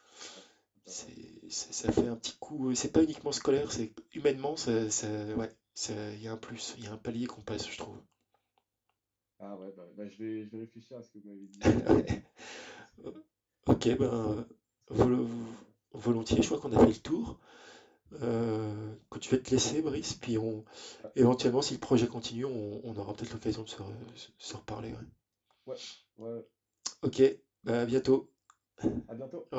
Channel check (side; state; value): both; identical; correlation 1.00